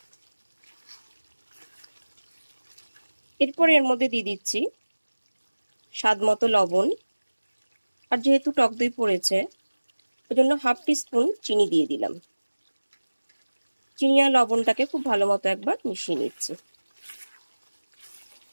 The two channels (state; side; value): inverted; both; correlation -1.00